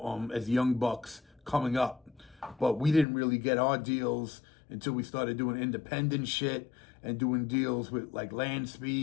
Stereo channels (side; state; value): right; drops out; at 3.1 s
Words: as young bucks coming up. But we didn't really get our deals until we started doing independent shit and doing deals with like Land